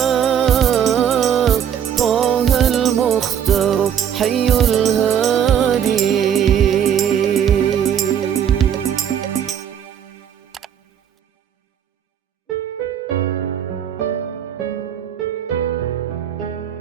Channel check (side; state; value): left; quieter; 8.9 dB